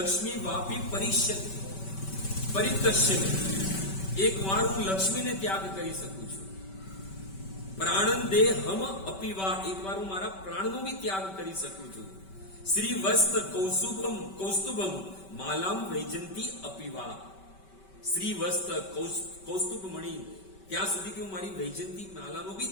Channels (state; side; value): late; right; 5.2 ms